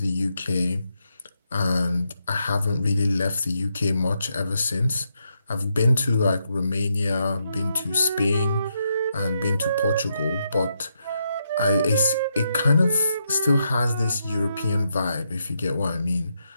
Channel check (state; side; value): inverted; both; correlation -0.81